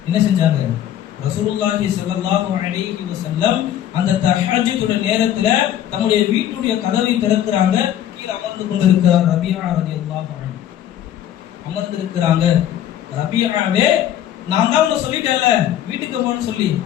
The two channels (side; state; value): right; quieter; 11.1 dB